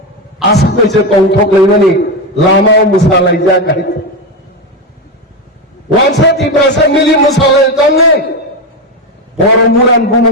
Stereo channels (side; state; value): both; normal; correlation 0.12